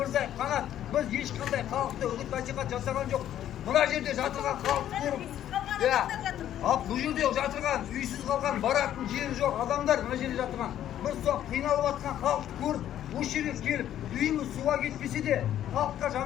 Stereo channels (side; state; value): right; quieter; 11.4 dB